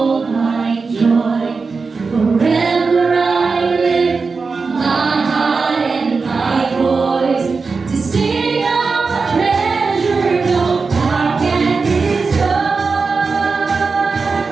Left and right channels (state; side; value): quieter; left; 4.5 dB